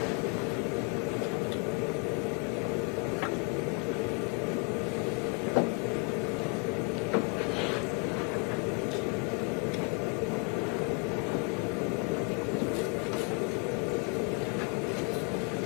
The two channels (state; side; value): quieter; right; 34.3 dB